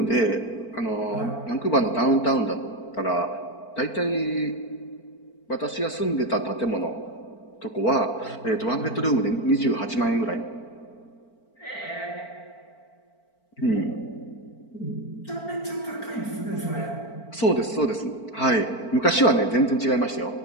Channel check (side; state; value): right; late; 4.4 ms